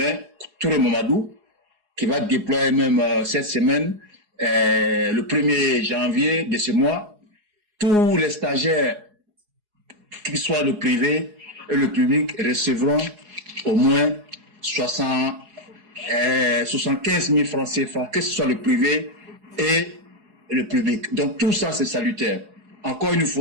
Touré Mamadou, qui va déployer même cette semaine, le 1er janvier de ce mois, tous les stagiaires, qu'ils soient le privé et le public, recevront au moins 75 000 francs CFA, que ce soit le privé et le public. Donc tout ça, c'est salutaire. Encore une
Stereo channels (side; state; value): left; late; 4.8 ms